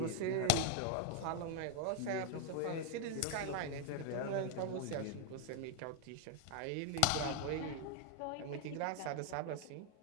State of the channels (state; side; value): different; both; correlation 0.00